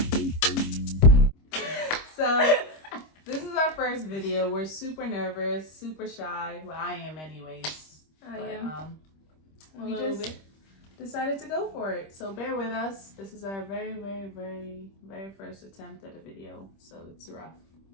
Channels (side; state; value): right; late; 26 ms